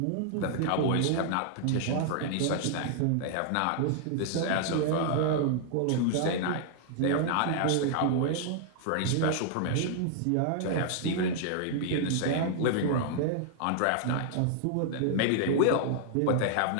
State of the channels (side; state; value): both; different; correlation 0.00